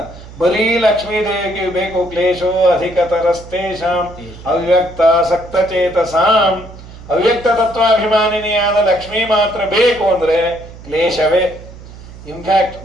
ಬರೀ ಲಕ್ಷ್ಮೀ ದೇವಿಗೆ ಬೇಕು. ಕ್ಲೇಶೋ ಅಧಿಕತರಸ್ತೇಷಾಂ ಅವ್ಯಕ್ತ ಸಕ್ತಚೇತಸಾಂ. ಅವ್ಯಕ್ತ ತತ್ವಾಭಿಮಾನಿನಿಯಾದ ಲಕ್ಷ್ಮೀ ಮಾತ್ರ ಬೇಕು ಅಂದ್ರೆ ಕ್ಲೇಶವೇ. ಇನ್ಫ್ಯಾಕ್ಟ್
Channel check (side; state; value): right; noise; hum, 17 dB below the sound